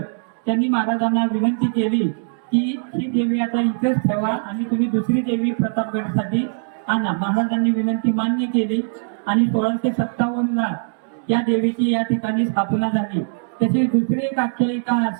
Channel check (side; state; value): left; silent; digital silence